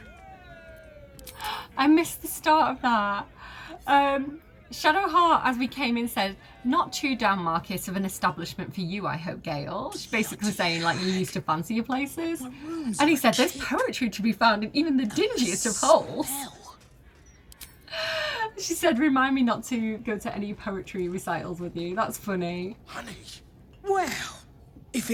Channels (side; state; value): both; identical; correlation 1.00